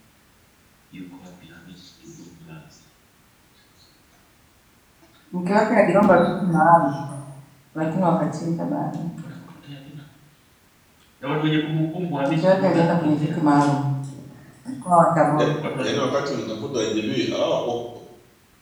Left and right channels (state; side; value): identical; both; correlation 1.00